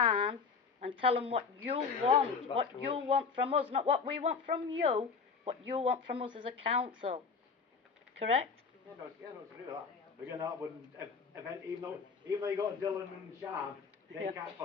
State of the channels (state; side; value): quieter; right; 5.3 dB